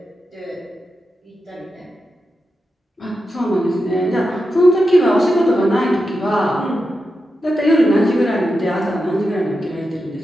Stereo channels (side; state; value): both; normal; correlation 0.89